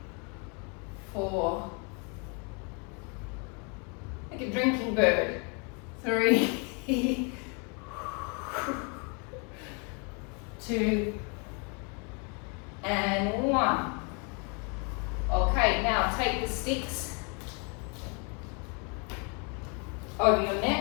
4, like a drinking bird. 3, 2, and 1. Okay, now take the sticks over your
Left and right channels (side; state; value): right; quieter; 35.1 dB